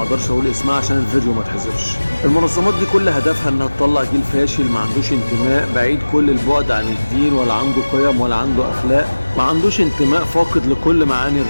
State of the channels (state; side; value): inverted; both; correlation -1.00